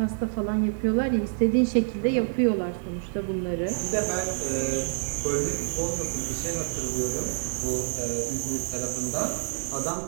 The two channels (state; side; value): silent; left; digital silence